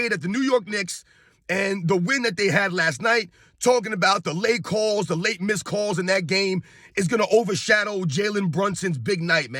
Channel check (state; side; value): identical; both; correlation 1.00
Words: at the New York Knicks and the win that they had last night, talking about the late calls, the late missed calls in that game is going to overshadow Jalen Brunson's big night,